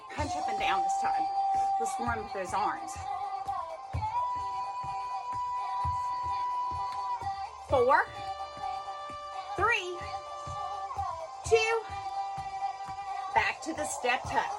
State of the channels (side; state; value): both; identical; correlation 1.00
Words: Punch up and down this time. Let's warm with those arms. 4, 3, 2. Back to the step